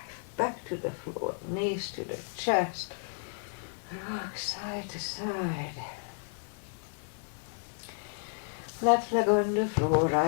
back to the floor, knees to the chest, rock side to side. Left leg on the floor,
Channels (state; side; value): silent; right; digital silence